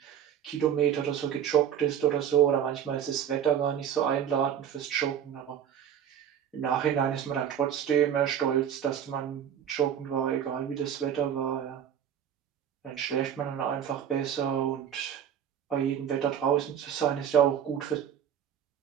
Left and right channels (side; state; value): left; quieter; 9.2 dB